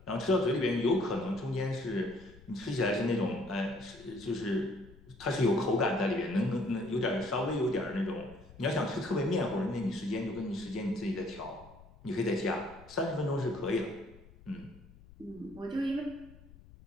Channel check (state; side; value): noise; left; rumble, 22 dB below the sound